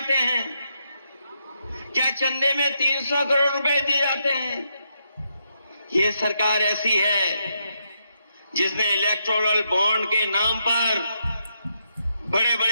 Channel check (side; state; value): both; inverted; correlation -0.80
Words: हैं? क्या चंदे में 300 करोड़ रुपए दिए जाते हैं? ये सरकार ऐसी है जिसने इलेक्टोरल बॉन्ड के नाम पर बड़े